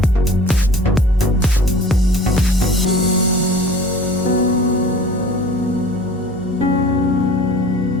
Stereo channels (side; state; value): both; normal; correlation 0.44